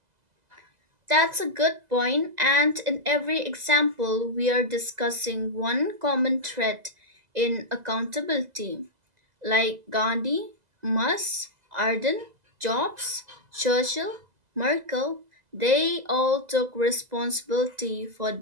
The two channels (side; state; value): left; late; 2.0 ms